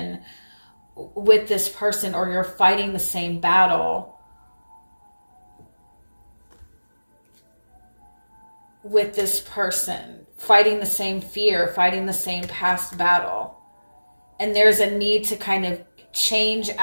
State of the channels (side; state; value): both; inverted; correlation -1.00